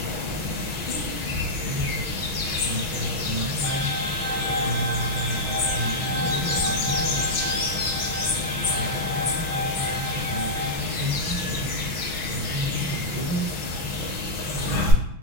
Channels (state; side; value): late; left; 6.1 ms